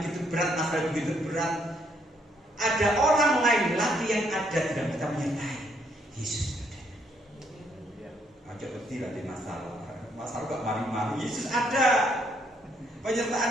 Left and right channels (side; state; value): both; normal; correlation 0.71